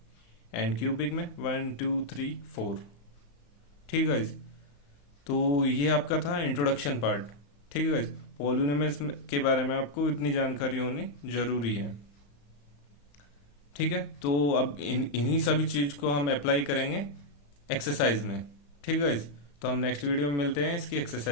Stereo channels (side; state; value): right; late; 35 ms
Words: एंड क्यूबिक में 1 2 3 4। ठीक है गाइस। तो ये आपका था इंट्रोडक्शन पार्ट। ठीक है गाइस। पॉलिनोमियल्स के बारे में आपको इतनी जानकारी होनी जरूरी है। ठीक है। तो अब इन्हीं सभी चीज को हम अप्लाई करेंगे एक्सरसाइज में। ठीक है गाइस। तो हम नेक्स्ट वीडियो में मिलते हैं इसकी